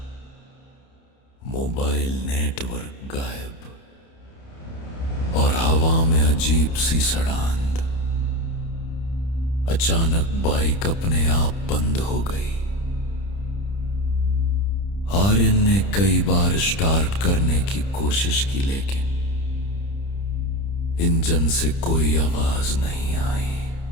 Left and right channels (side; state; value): right; late; 30 ms